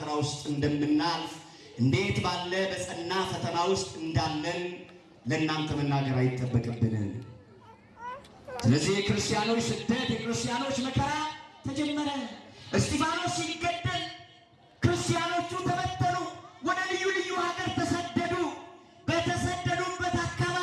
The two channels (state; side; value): identical; both; correlation 1.00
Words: ውስጥ እንደምናልፍ እንዴት ባለ በጸና ፈተና ውስጥ እንዳለን ለእናንተ መናገር አይጠበቅብንም። ስለዚህ የክርስቲያኖች ስደት የክርስቲያኖች መከራ ተጀመረ። እስጢፋኖስ ሲገደል ክርስቲያኖቹ ተበተኑ፣ ወደ ልዩ ልዩ ሀገር ተሰደዱ። በተሰደዱበት